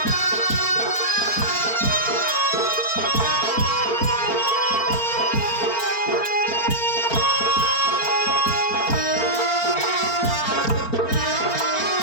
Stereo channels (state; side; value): late; right; 4.4 ms